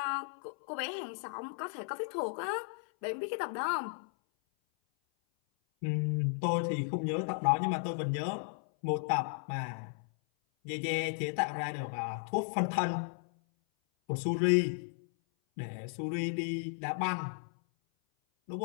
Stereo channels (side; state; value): right; silent; 55 dB below the other